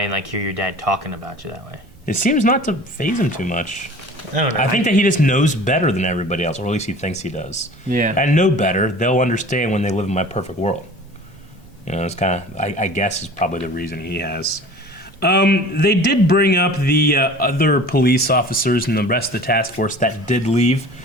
and like hear your dad talking about you that way. It seems not to faze him too much. I don't know. I think that he just knows better than everybody else, or at least he thinks he does. Yeah. And know better, they'll understand when they live in my perfect world. It's kind of, I guess, is probably the reason he has. They did bring up the other police officers and the rest of the task force that did leave.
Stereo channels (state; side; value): normal; both; correlation 0.42